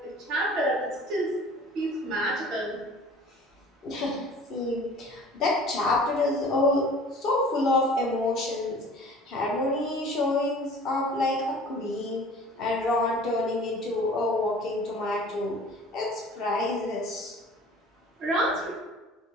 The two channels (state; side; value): normal; both; correlation 0.46